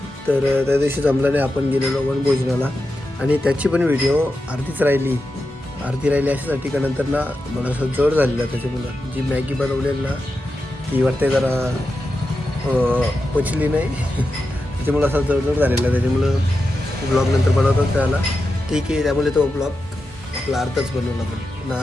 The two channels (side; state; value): both; normal; correlation 0.89